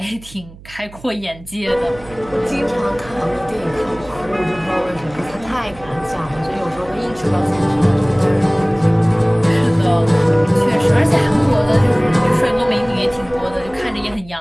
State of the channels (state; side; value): noise; right; hum, 20 dB below the sound